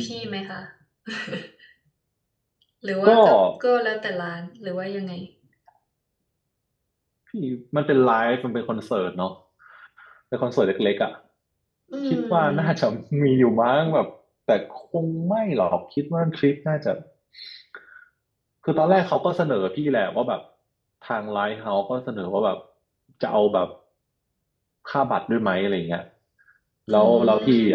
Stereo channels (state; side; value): identical; both; correlation 1.00